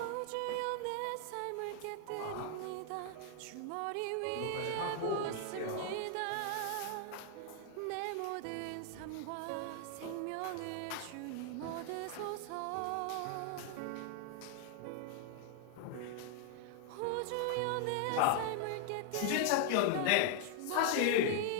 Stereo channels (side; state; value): both; different; correlation 0.00